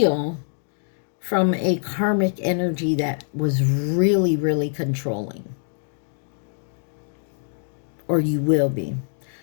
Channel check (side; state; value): right; silent; digital silence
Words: from a karmic energy that was really, really controlling. Or you will be.